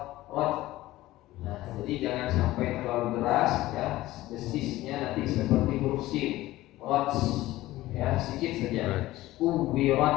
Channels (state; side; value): quieter; right; 16.7 dB